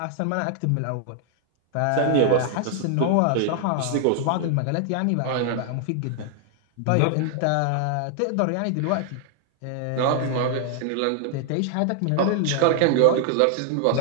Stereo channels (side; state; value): both; different; correlation 0.00